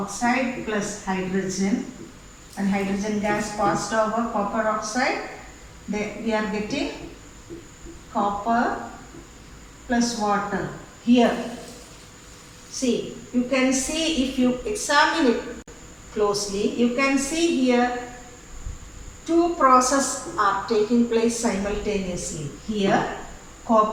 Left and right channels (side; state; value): both; identical; correlation 1.00